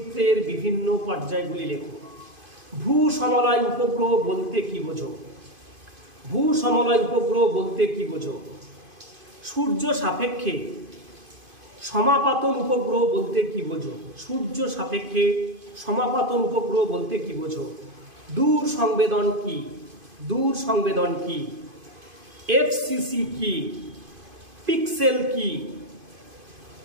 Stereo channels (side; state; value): left; late; 2.5 ms